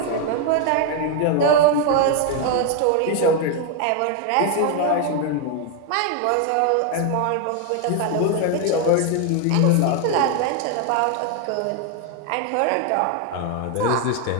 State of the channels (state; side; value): different; both; correlation 0.01